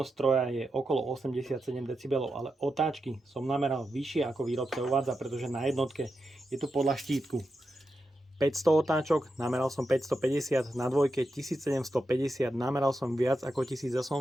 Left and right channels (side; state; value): both; normal; correlation 0.88